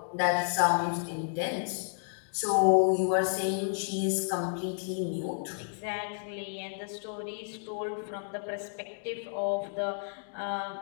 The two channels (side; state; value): right; silent; digital silence